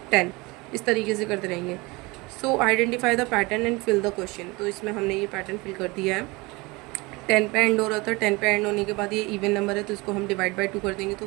10. इस तरीके से करते रहेंगे. So identify the pattern and fill the question. तो इसमें हमने ये पैटर्न फिल कर दिया है. 10 पे एंड हो रहा था, 10 पे एंड होने के बाद ये इवन नंबर है तो इसको हम डिवाइड बाय 2 कर देंगे तो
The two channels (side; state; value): left; quieter; 24.4 dB